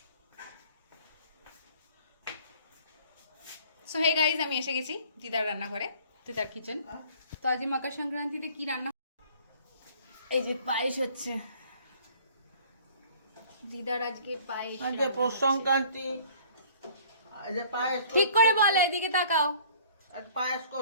সো হে গাইজ, আমি এসে গেছি দিদার রান্নাঘরে, দিদার কিচেন। তো আজ মকর সংক্রান্তিতে কি রান্না, এই যে পায়েস হচ্ছে। দিদার আজকে পায়েস, আজ পৌষ সংক্রান্তি, আজ পায়েস ঠিক করে বলে, এদিকে তাকাও। আজ পায়েস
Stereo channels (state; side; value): inverted; both; correlation -0.52